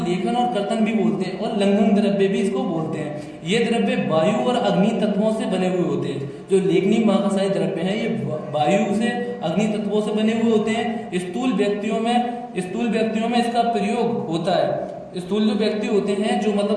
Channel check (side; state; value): both; identical; correlation 1.00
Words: लेखन और कर्तन भी बोलते हैं और लंघन द्रव्य भी इसको बोलते हैं। ये द्रव्य वायु और अग्नि तत्वों से बने हुए होते हैं। जो लेखनीय महाकषाय द्रव्य हैं ये वायु से, अग्नि तत्वों से बने हुए होते हैं। स्थूल व्यक्तियों में इसका प्रयोग होता है। स्थूल जो व्यक्ति होते हैं, जो